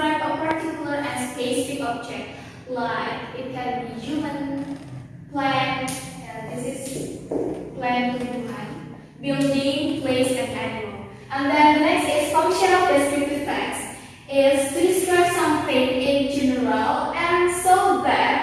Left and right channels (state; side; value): identical; both; correlation 1.00